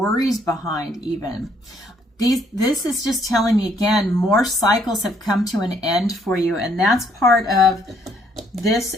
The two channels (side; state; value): both; normal; correlation 0.67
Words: behind even. This is just telling me again, more cycles have come to an end for you, and that's part of this